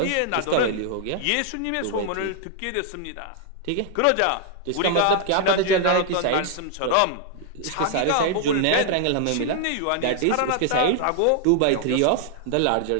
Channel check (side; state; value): both; different; correlation 0.00